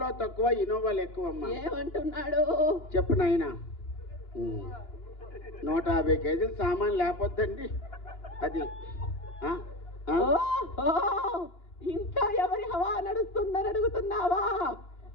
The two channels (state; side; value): late; right; 2.9 ms